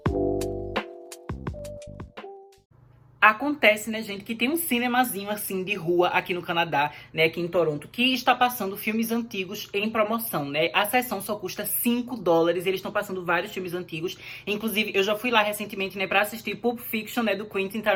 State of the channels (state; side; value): identical; both; correlation 1.00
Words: Acontece, né, gente, que tem um cinemazinho, assim, de rua aqui no Canadá, né, aqui em Toronto, que está passando filmes antigos em promoção, né? A sessão só custa $5, eles estão passando vários filmes antigos. Inclusive, eu já fui lá recentemente, né, pra assistir Pulp Fiction, né, do Quentin